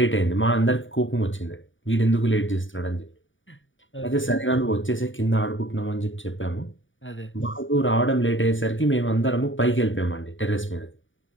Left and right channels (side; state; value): right; late; 0.56 ms